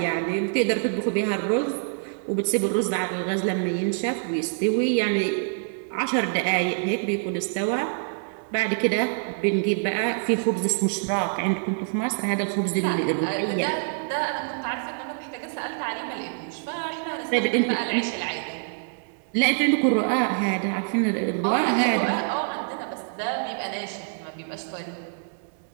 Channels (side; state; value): left; silent; digital silence